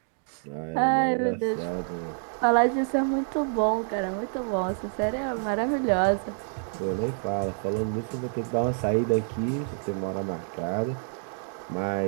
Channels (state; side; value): silent; left; 60 dB below the other